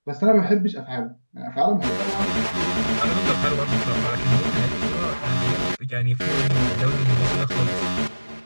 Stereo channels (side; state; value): both; inverted; correlation -1.00